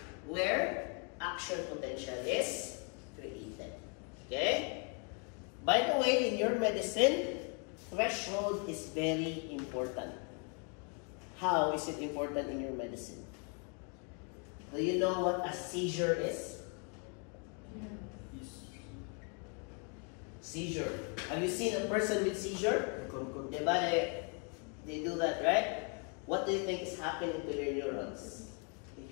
where action potential is created. Okay? By the way, in your medicine, threshold is very important. How is it important in your medicine? Do you know what a seizure is? Seizure. Have you seen a person with seizure? Diba they do that, right? What do you think is happening to your neurons if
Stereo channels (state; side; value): quieter; right; 37.9 dB